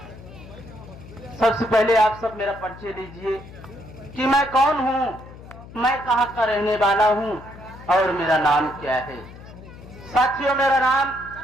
सबसे पहले आप सब मेरा परिचय लीजिए कि मैं कौन हूँ, मैं कहाँ का रहने वाला हूँ और मेरा नाम क्या है। साथियों,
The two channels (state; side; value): noise; left; hum, 17 dB below the sound